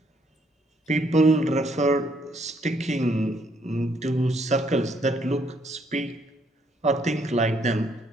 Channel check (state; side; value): normal; both; correlation 0.69